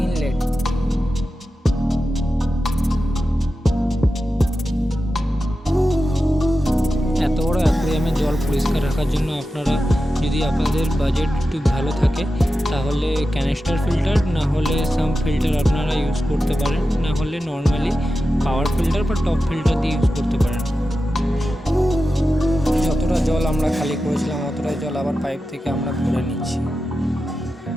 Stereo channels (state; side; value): normal; both; correlation 0.92